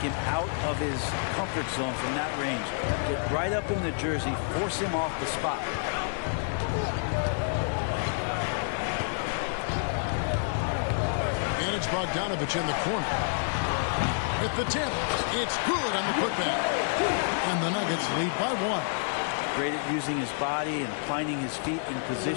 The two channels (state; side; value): silent; right; digital silence